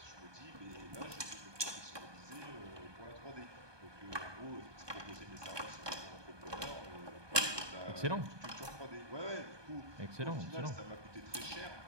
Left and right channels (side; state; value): left; late; 1.2 ms